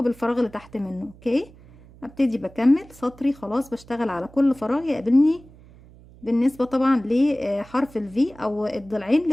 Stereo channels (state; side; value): noise; right; hum, 23 dB below the sound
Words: بالفراغ اللي تحت منه. اوكي، ابتدي بكمل سطري خلاص، بشتغل على كل فراغ يقابلني بالنسبة طبعا لحرف الفي او الضلعين